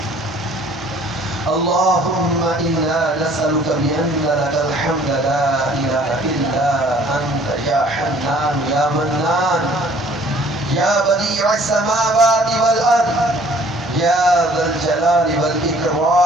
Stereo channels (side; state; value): both; normal; correlation 0.56